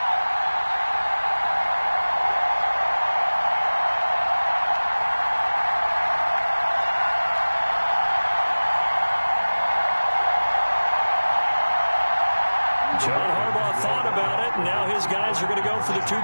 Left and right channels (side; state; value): both; inverted; correlation -1.00